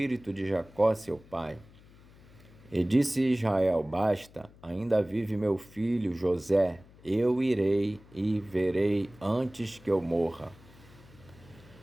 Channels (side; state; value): left; noise; hum, 24 dB below the sound